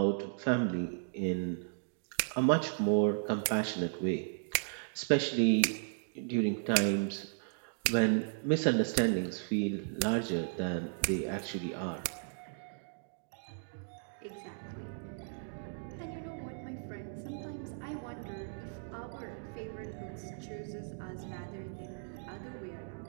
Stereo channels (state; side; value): silent; left; digital silence